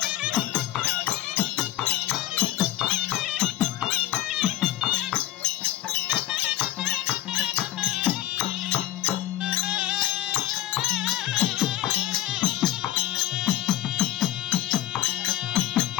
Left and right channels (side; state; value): right; quieter; 14.1 dB